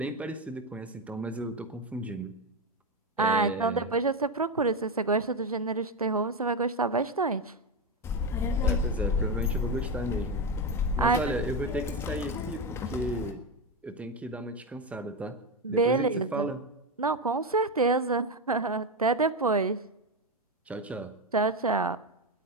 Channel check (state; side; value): normal; both; correlation 0.13